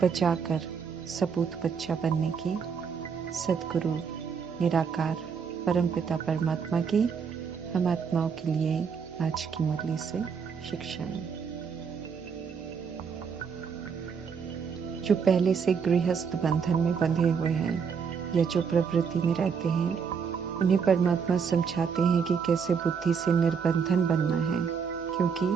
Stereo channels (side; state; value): left; quieter; 6.3 dB